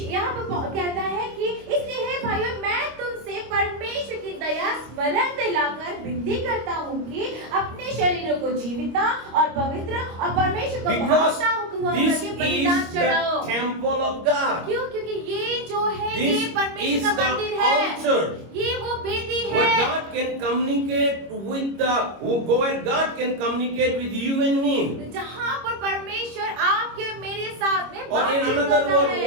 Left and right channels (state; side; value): late; left; 25 ms